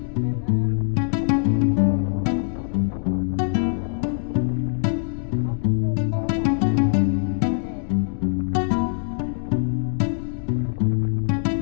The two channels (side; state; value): right; silent; digital silence